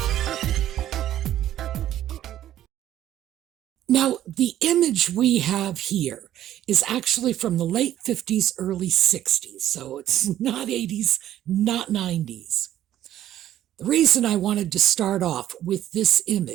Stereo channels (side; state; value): left; quieter; 12.3 dB